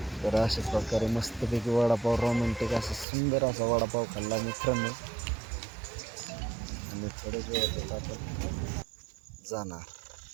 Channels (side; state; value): left; drops out; at 3.1 s